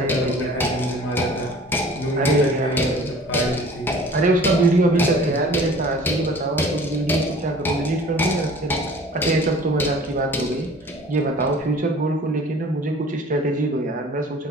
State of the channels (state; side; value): normal; both; correlation 0.47